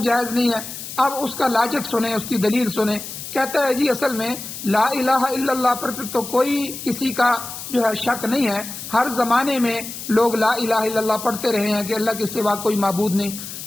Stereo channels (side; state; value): left; noise; hiss, 10 dB below the sound